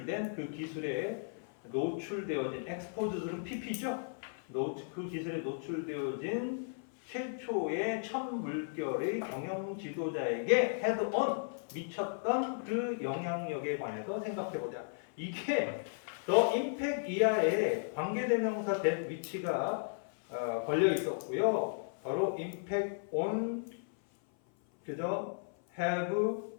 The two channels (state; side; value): silent; right; 54 dB below the other